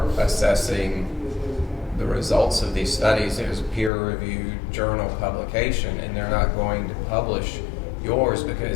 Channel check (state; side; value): drops out; right; at 3.9 s